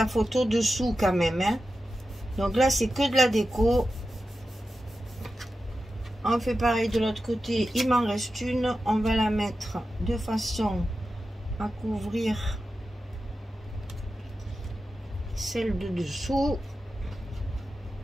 photo dessous quand même. Hein. Donc là, c'est que de la déco. On fait pareil de l'autre côté, il m'en reste une, on va la mettre de façon à couvrir celle de dessous.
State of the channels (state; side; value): normal; both; correlation 0.91